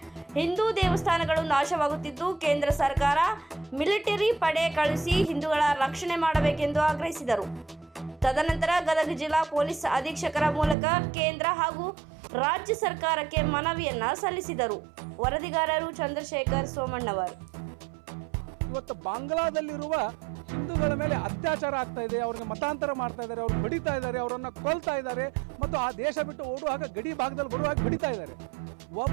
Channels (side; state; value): left; drops out; at 10.8 s